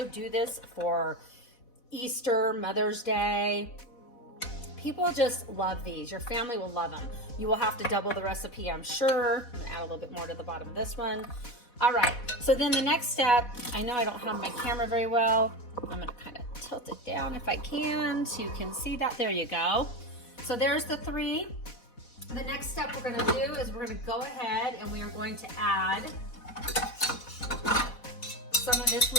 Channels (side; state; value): right; late; 4.1 ms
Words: do this for Easter, Mother's Day. People just love these. Your family will love them. You will have to double the recipe, I'm sure. I'm gonna add a little bit more to the bottom of this one. All right, so then the next step, I know I don't have my camera very well. I'm gonna kind of tilt it down if I can so you can see that. There you go. So there's the three. The next step we're going to do is we're going to go ahead and we are going to add some of this